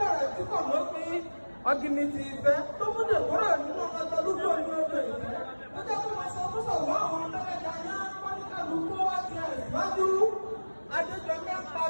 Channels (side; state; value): both; inverted; correlation -1.00